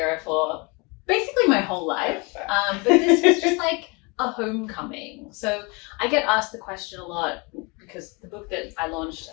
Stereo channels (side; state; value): right; quieter; 29.3 dB